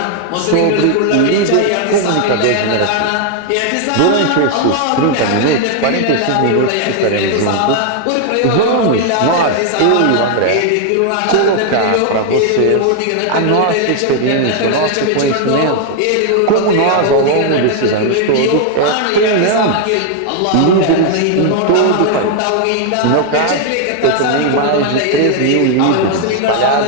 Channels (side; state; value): both; different; correlation 0.00